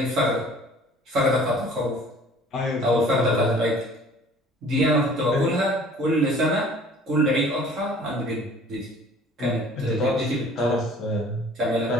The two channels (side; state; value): both; normal; correlation 0.50